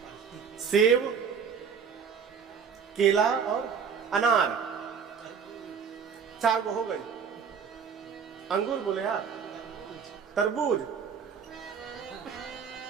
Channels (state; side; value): quieter; left; 6.6 dB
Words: सेब, केला और अनार। 4 को हो गई। अंगूर बोले यार, तरबूज,